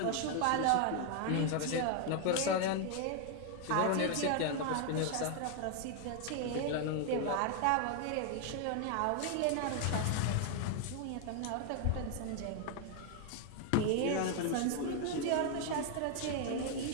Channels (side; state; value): both; different; correlation 0.00